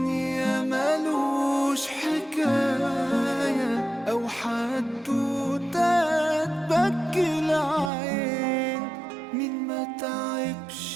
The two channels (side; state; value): left; drops out; at 7.9 s